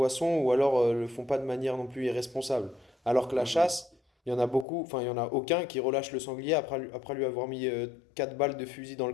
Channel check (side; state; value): right; drops out; at 4.7 s